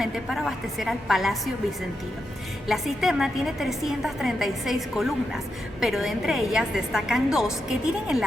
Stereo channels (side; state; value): both; normal; correlation 0.86